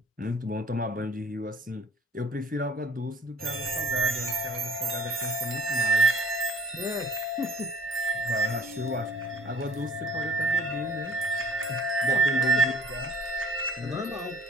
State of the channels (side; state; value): both; normal; correlation 0.53